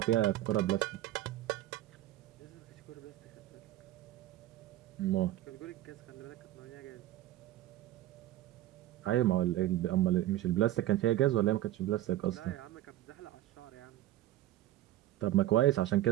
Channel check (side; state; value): left; quieter; 14.4 dB